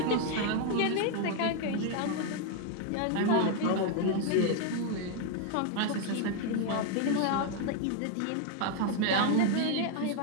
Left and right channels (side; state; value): both; different; correlation 0.01